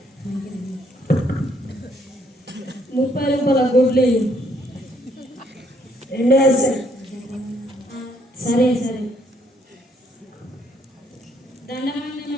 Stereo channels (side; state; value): both; normal; correlation 0.69